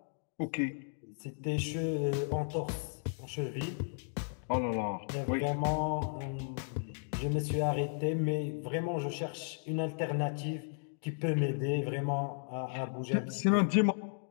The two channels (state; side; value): silent; right; digital silence